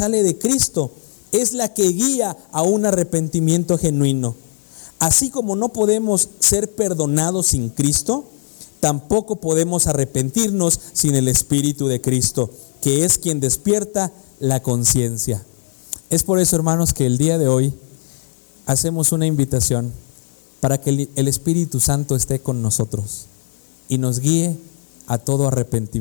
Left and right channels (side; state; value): right; silent; 66 dB below the other